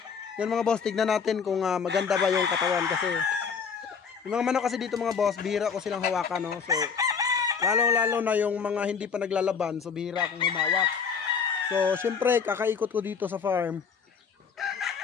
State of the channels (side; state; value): right; quieter; 6.2 dB